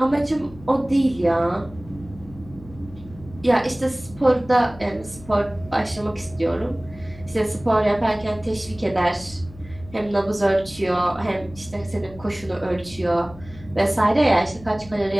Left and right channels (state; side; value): noise; left; hum, 19 dB below the sound